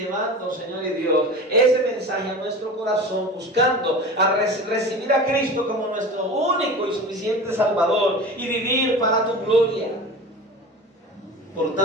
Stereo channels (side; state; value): both; normal; correlation 0.34